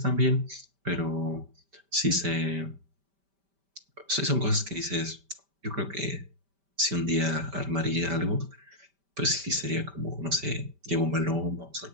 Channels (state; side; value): late; left; 5.1 ms